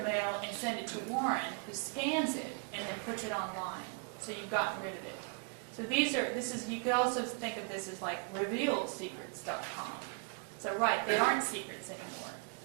and send it to Warren, who scans it and then puts it online. So you've gotten rid of it. So you could also think of this as like revealedsecrets.com. So right, they aren't secrets anymore.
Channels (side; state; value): left; quieter; 38.4 dB